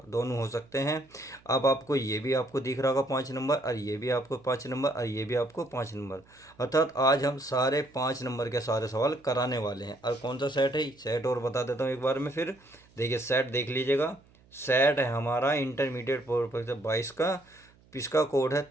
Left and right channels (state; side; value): noise; right; hum, 29 dB below the sound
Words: दोनों हो सकते हैं। अब आपको ये भी आपको दिख रहा होगा 5 नंबर, और ये भी आपको 5 नंबर, और ये भी आपको 5 नंबर। अर्थात आज हम सारे 5 नंबर के सारे सवाल कराने वाले हैं। और कौन सा सेट है, सेट और बता देता हूँ एक बार में फिर। देखिए सेट देख लीजिएगा, सेट है हमारा इंटरमीडिएट परीक्षा 22 का। इसका कोड है